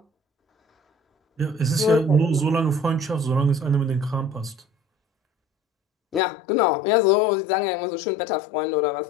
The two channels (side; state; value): right; drops out; at 6.2 s